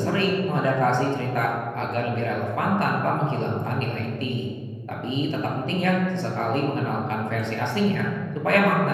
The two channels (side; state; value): both; identical; correlation 1.00